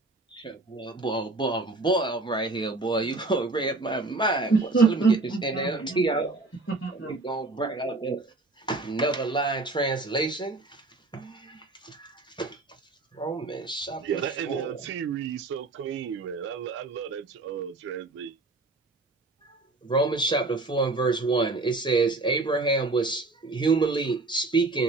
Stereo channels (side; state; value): left; quieter; 3.3 dB